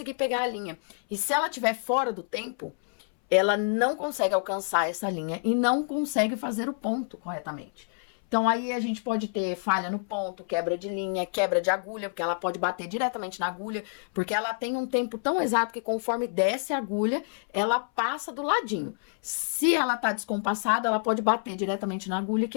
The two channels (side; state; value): right; silent; 59 dB below the other